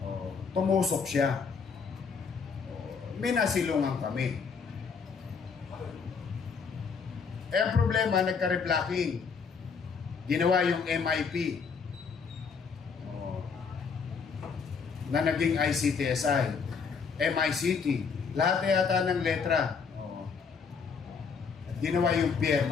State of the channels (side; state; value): right; quieter; 5.7 dB